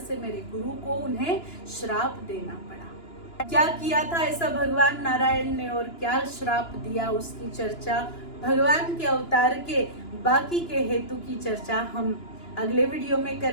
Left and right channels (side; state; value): right; late; 2.9 ms